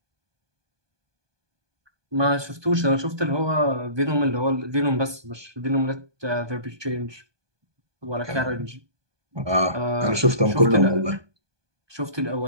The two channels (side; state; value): left; late; 1.2 ms